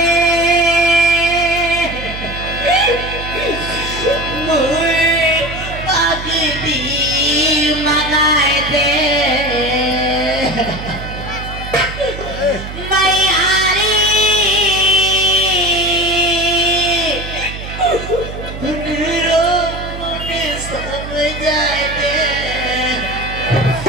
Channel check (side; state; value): right; noise; hum, 10 dB below the sound